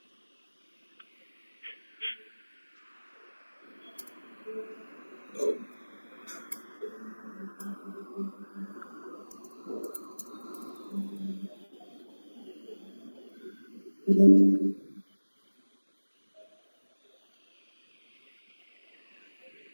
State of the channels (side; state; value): both; inverted; correlation -1.00